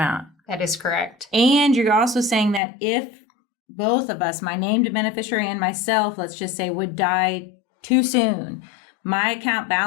That is correct. And you're also saying that if both of us, my named beneficiary and myself, let's just say, would die too soon, my account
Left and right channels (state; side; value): drops out; right; at 2.6 s